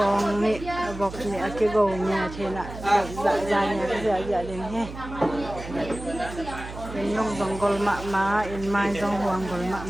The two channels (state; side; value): noise; right; hum, 11 dB below the sound